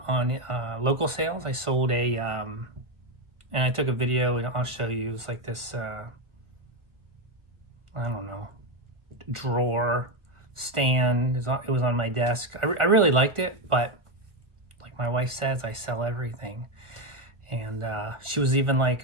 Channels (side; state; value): left; late; 1.4 ms